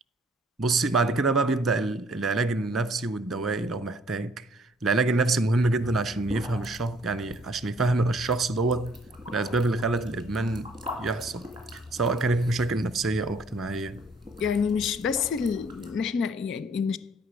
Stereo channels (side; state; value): both; normal; correlation 0.61